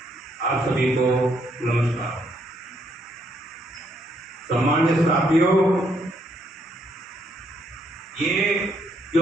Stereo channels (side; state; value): both; normal; correlation 0.73